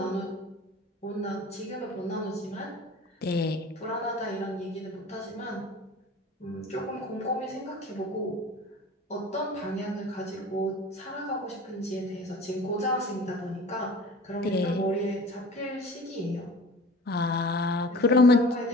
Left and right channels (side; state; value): both; normal; correlation 0.41